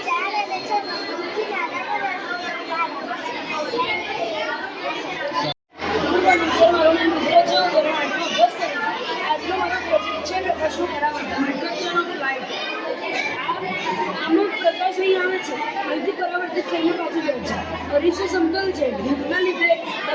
અરીસો સમતલ છે. ધૂપના લીધે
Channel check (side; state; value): both; identical; correlation 1.00